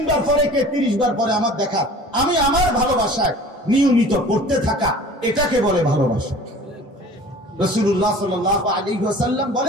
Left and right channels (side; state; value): both; normal; correlation 0.44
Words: বার পরে, কে 30 বার পরে, আমার দেখা, আমি আমার ভালোবাসায় নিয়মিত পড়তে থাকা, এটাকে বলে ভালোবাসা। রাসূলুল্লাহ সাল্লাল্লাহু আলাইহি ওয়াসাল্লাম